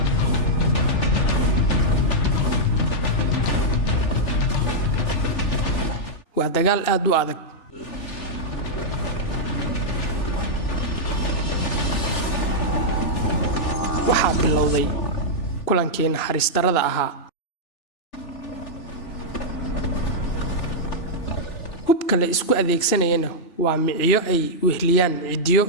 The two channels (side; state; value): right; late; 3.4 ms